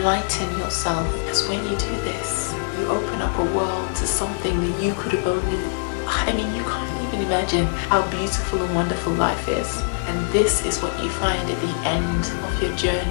yourself. Because when you do this, You open up a world to something that you could have only, I mean, you can't even imagine how beautiful and wonderful life is. And this is what you find at the end of your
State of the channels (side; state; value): right; silent; digital silence